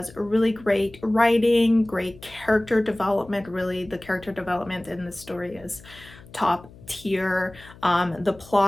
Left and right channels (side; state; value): left; noise; hum, 21 dB below the sound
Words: really great writing, great character development. Really, the character development in this story is top tier. The